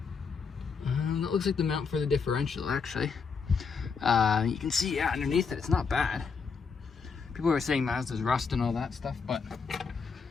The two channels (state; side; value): quieter; right; 5.5 dB